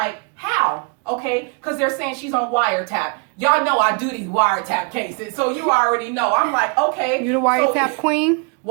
how? Okay, because they're saying she's on wiretap. Y'all know I do these wiretap cases, so you already know. I'm like, okay. You the wiretap queen?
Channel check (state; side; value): quieter; left; 34.7 dB